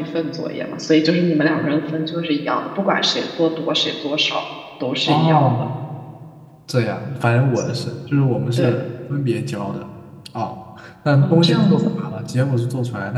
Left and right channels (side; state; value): both; identical; correlation 1.00